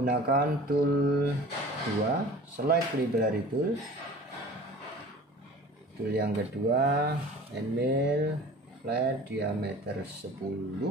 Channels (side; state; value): both; normal; correlation 0.42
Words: tool 2, select library tool, tool yang kedua end mill flat diameter 10.